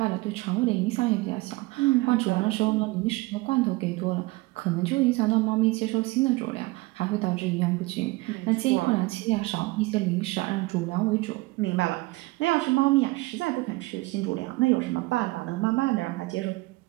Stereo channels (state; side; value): quieter; left; 21.9 dB